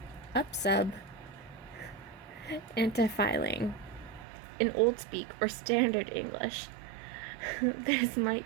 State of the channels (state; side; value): drops out; left; at 4.2 s